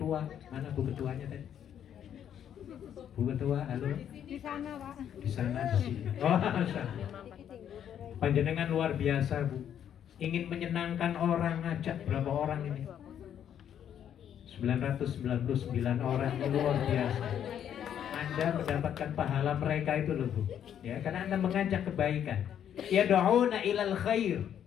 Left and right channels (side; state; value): right; quieter; 9.5 dB